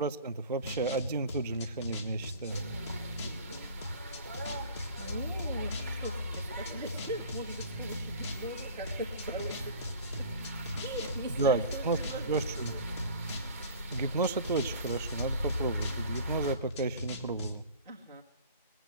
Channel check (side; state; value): both; inverted; correlation -0.44